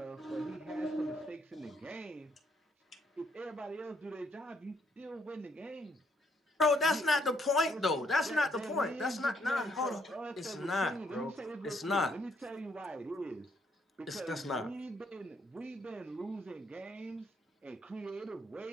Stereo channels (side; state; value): both; normal; correlation 0.71